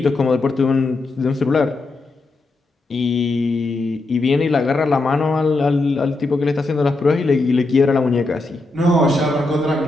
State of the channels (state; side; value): quieter; right; 3.1 dB